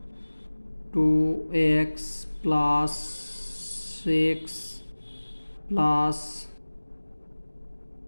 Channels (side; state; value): both; inverted; correlation -1.00